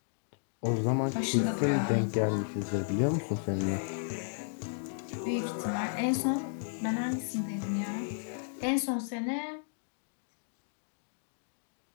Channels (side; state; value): right; silent; digital silence